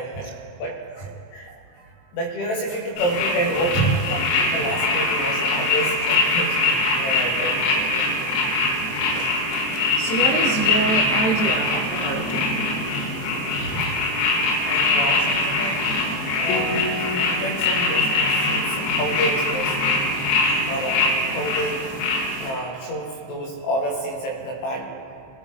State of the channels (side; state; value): right; late; 23 ms